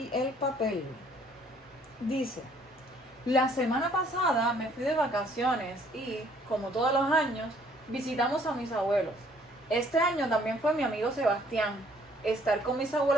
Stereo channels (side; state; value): both; normal; correlation 0.61